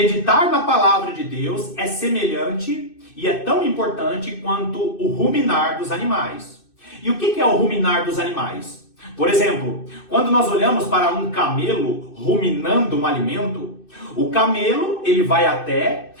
na palavra de Deus é semelhante e é tão importante quanto o ruminar dos animais. E o que é o ruminar dos animais? Por exemplo, quando nós olhamos para um camelo ruminando um alimento, o camelo, ele vai até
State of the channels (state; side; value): late; right; 2.6 ms